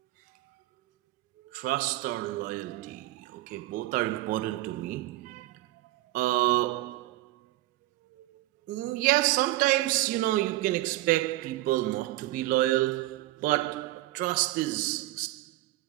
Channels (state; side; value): quieter; left; 17.0 dB